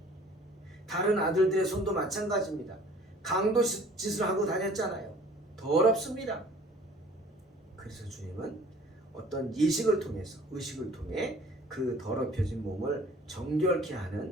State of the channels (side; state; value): both; normal; correlation 0.51